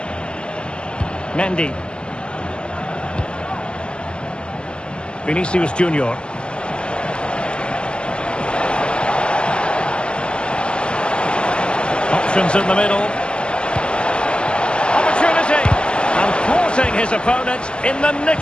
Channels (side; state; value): right; late; 0.055 ms